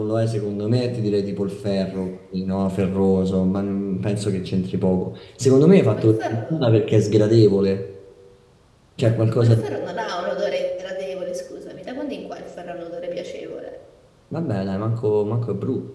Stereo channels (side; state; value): both; identical; correlation 1.00